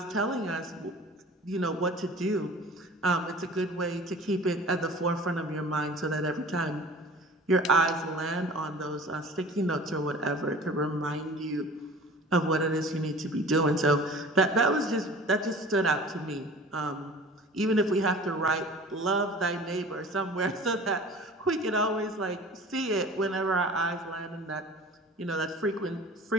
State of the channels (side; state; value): both; normal; correlation 0.42